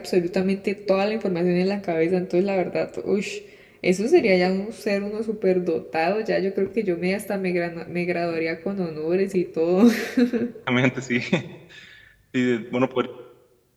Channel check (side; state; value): both; identical; correlation 1.00